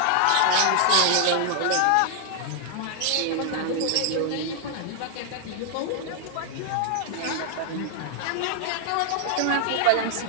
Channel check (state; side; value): different; both; correlation 0.00